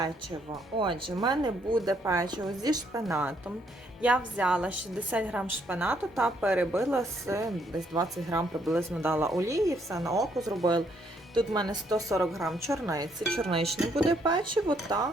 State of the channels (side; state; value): both; normal; correlation 0.71